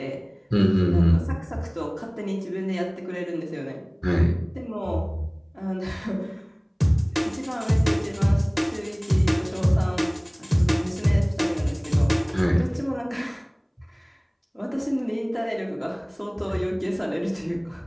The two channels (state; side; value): identical; both; correlation 1.00